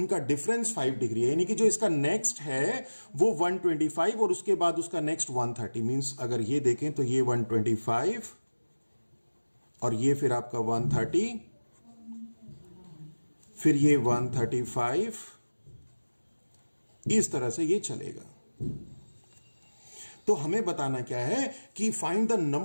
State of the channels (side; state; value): both; inverted; correlation -1.00